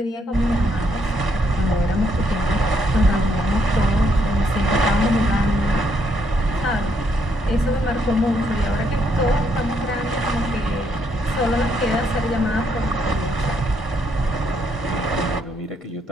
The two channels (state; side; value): normal; both; correlation 0.73